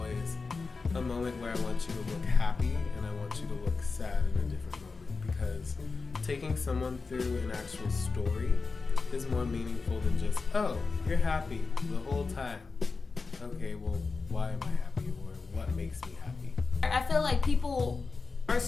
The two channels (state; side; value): quieter; right; 4.3 dB